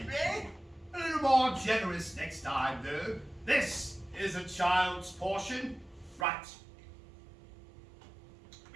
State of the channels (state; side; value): drops out; left; at 6.2 s